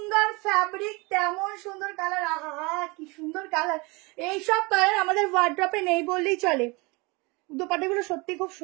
ফ্যাব্রিক তেমন সুন্দর কালার। আহা কি সুন্দর কালার, এইসব কালার আমাদের ওয়ার্ড্রপে নেই বললেই চলে। দোপাট্টাগুলো সত্যি খুব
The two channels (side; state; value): left; quieter; 26.7 dB